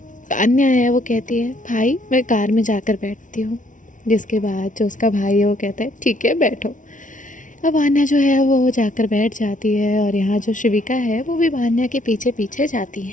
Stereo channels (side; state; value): right; late; 0.37 ms